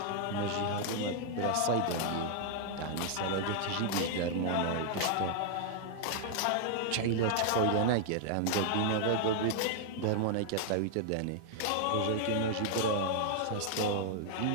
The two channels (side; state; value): both; different; correlation 0.00